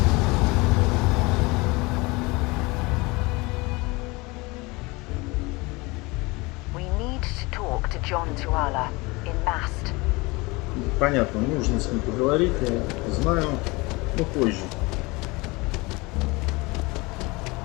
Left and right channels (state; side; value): quieter; right; 24.5 dB